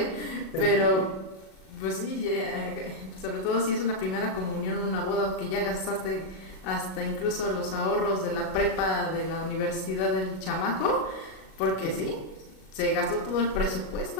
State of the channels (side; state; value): right; late; 38 ms